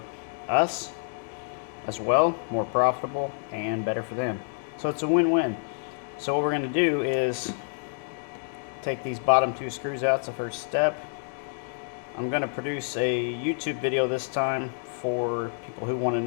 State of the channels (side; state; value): right; silent; digital silence